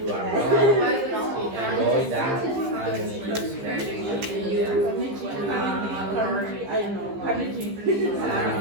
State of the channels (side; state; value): left; late; 15 ms